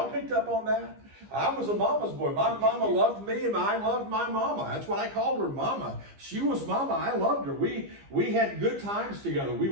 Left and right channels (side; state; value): left; late; 15 ms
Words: picked up on that? I was a mama's boy. My mama loved me and I loved my mama. That's what I called her, mama. She was mama. I loved her. We had good times together. We